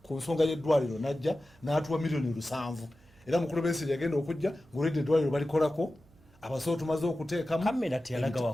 ku nsonga y'eddwaliro najja n'atuwa $7,000,000 era mukulu Besigye yagenda okujja ng'olwedde eddwaliro balikolako abasawo tumaze okuteekamu kamera teyalaga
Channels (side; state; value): right; noise; hum, 29 dB below the sound